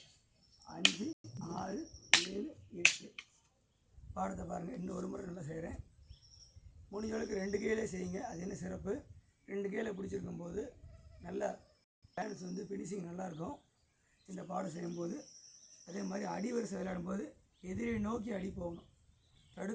5 6 7 8. பாடத்தை பாருங்கள், இன்னும் ஒரு முறை நல்லா செய்கிறேன். முடிஞ்சளவுக்கு 2 கையிலே செய்யுங்க. அது என்ன சிறப்பு, 2 கையில் பிடிச்சிருக்கும் போது நல்லா பேலன்ஸ் வந்து ஃபினிஷிங் நல்லாயிருக்கும். இந்த பாடம் செய்யும்போது அதே மாதிரி அடிவரிசை விளையாடும்போது எதிரை நோக்கி அடி போகணும்.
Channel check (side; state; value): both; identical; correlation 1.00